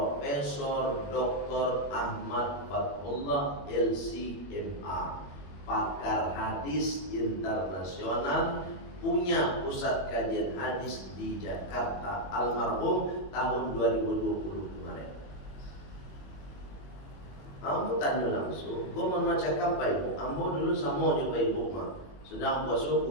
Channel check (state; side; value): late; right; 21 ms